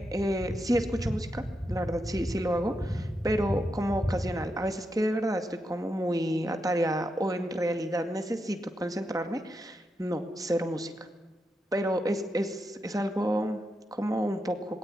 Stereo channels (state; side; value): normal; both; correlation 0.85